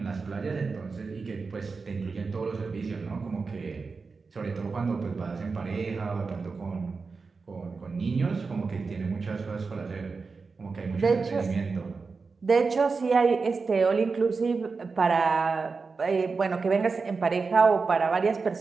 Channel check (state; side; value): quieter; left; 4.5 dB